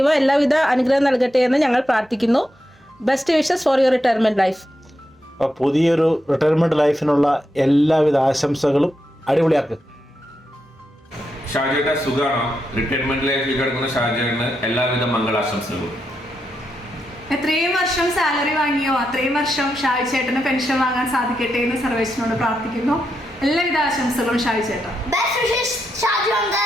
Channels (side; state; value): both; normal; correlation 0.85